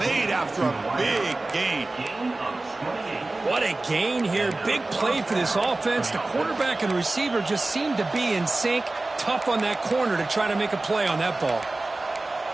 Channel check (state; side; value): quieter; left; 3.0 dB